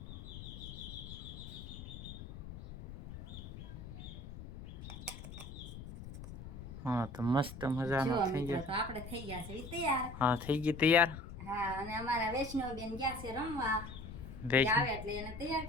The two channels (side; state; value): left; noise; rumble, 11 dB below the sound